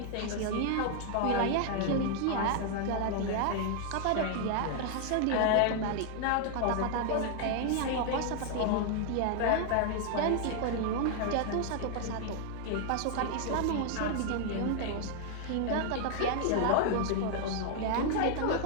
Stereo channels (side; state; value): both; different; correlation 0.00